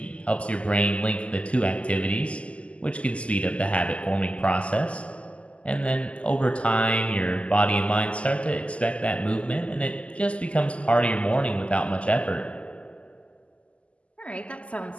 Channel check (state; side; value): late; right; 0.059 ms